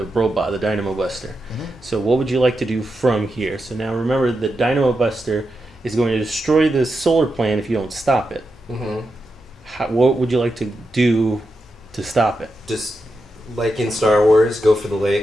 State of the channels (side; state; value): both; normal; correlation 0.87